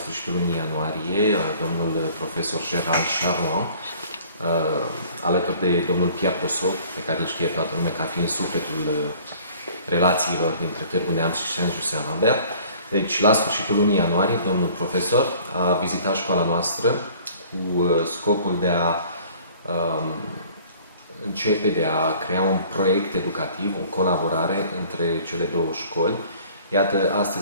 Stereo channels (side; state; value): both; inverted; correlation -0.52